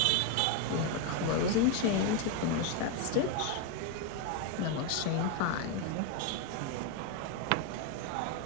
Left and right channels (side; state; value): both; different; correlation 0.01